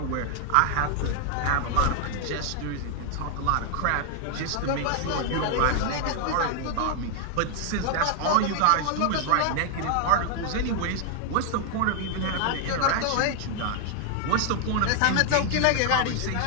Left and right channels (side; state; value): both; different; correlation 0.00